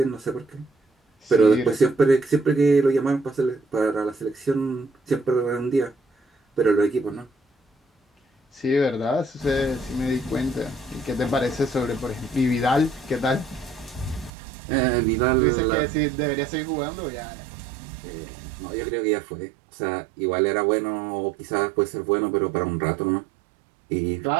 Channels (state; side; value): drops out; left; at 14.3 s